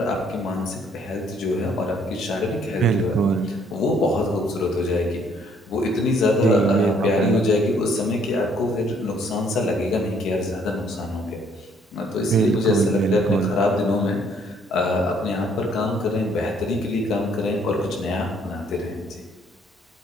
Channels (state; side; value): normal; both; correlation 0.64